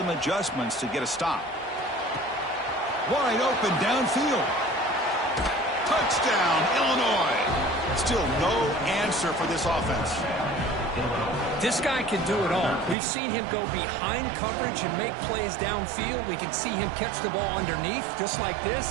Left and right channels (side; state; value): left; drops out; at 13.0 s